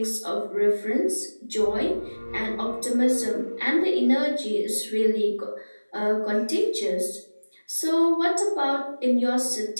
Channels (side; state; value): both; inverted; correlation -1.00